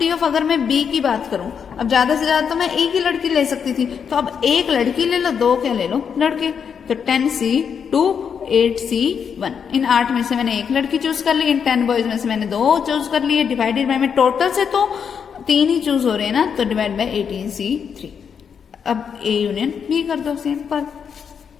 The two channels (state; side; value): quieter; right; 7.0 dB